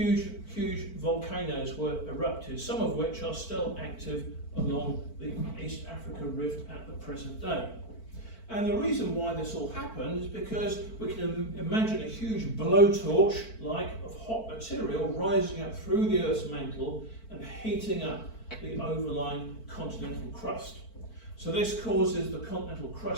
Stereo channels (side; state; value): right; late; 4.5 ms